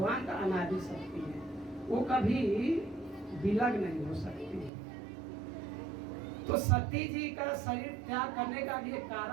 का अनादि शक्ति है, वो कभी विलग नहीं हो सकती है। तो सती जी का शरीर त्याग करने का भी एक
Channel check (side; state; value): left; drops out; at 4.7 s